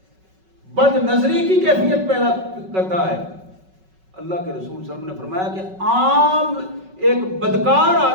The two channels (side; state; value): left; late; 5.3 ms